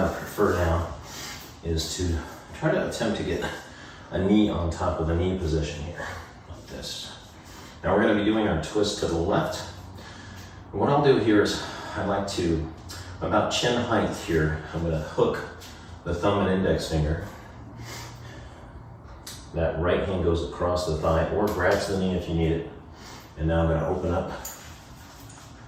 prefer now is to try to attempt to get a knee on top of the knee position here, like this. Now we're going to be doing our twist to the left. And what I'll do here is I like to, about chin height here, I'm going to hook the thumb and index finger. That right hand goes across the thigh or grabs the knee if you need it. And now I'm going to open up.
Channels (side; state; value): both; identical; correlation 1.00